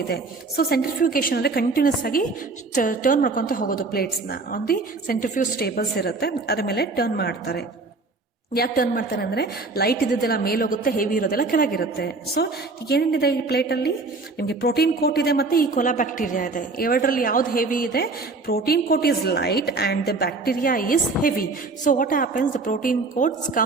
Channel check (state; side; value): quieter; left; 3.7 dB